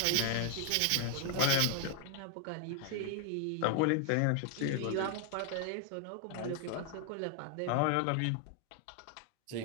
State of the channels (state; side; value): different; both; correlation 0.00